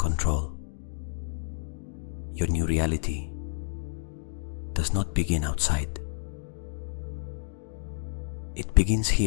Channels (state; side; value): silent; right; digital silence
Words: Your new reality does not begin outside. It begins